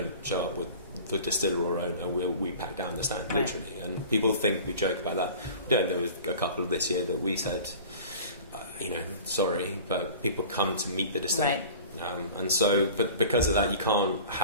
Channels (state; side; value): inverted; both; correlation -0.42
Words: show up with the distiller or owner, we pack down the stand, literally. And people think we joke about that. We don't. There was a couple of this year that we said, sorry, but people come to meet the distiller. Right. And so, but because of that, you can't